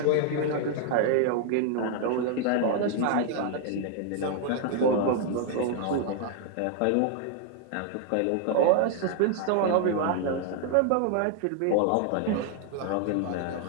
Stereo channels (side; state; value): both; different; correlation 0.00